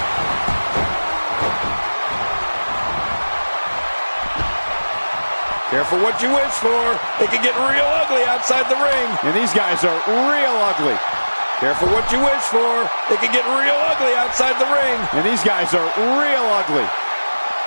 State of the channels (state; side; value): inverted; both; correlation -1.00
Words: Careful what you wish for. It can get real ugly outside the ring. And these guys are real ugly. Careful what you wish for. It can get real ugly outside the ring. And these guys are real ugly.